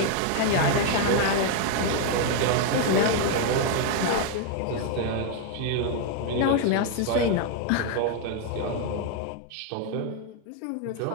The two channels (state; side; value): different; both; correlation 0.01